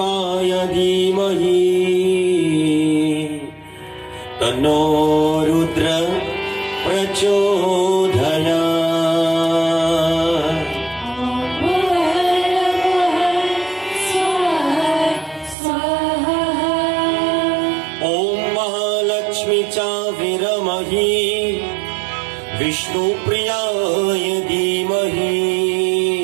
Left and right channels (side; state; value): left; drops out; at 15.6 s